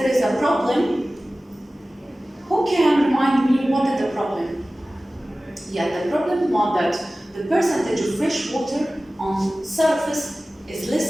is a problem. Who can remind me what is the problem? Yeah, the problem was that the percentage of fresh water on surface is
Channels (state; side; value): normal; both; correlation 0.97